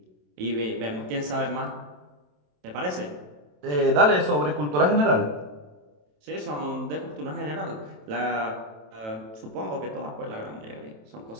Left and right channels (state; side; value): late; left; 27 ms